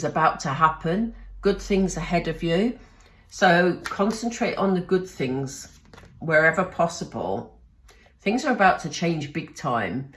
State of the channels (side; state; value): both; identical; correlation 1.00